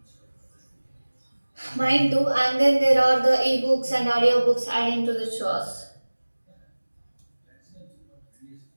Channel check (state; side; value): inverted; both; correlation -1.00